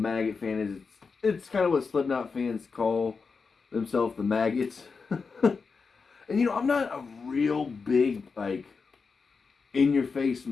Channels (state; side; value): quieter; right; 5.0 dB